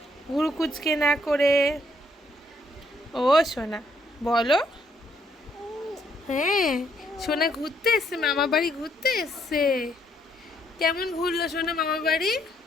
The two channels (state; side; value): normal; both; correlation 0.71